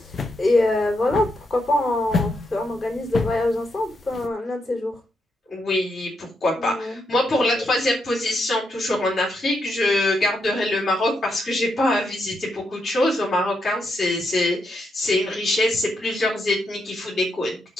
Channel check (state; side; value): normal; both; correlation 0.81